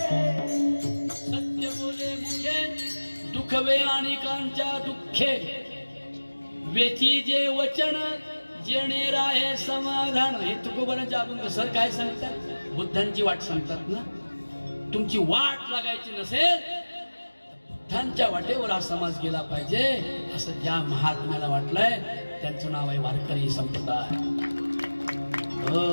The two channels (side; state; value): both; inverted; correlation -1.00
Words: सत्य बोले मुखे दुखवे अनेकांच्या दुःखे वेची जे वचन जेणे राहे समाधान. हे तुकोबरांचे अभंग सर काय सांगतात बुद्धांची वाट सांगतात ना. तुमची वाट लागायची नसेल बुद्धांच्या वाटेवर हा समाज गेला पाहिजे असं ज्या महात्म्याला वाटलंय त्यांचं नाव आहे वारकरी संप्रदाय.